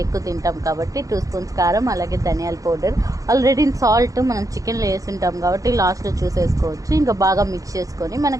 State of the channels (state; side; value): late; left; 0.17 ms